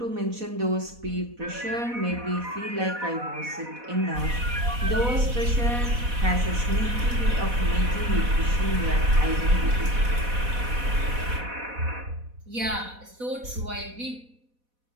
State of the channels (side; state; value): left; late; 4.1 ms